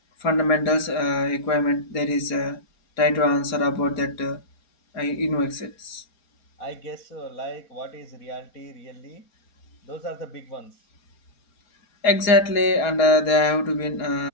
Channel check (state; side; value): late; right; 4.3 ms